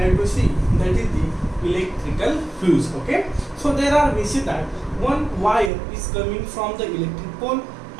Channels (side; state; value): left; drops out; at 5.7 s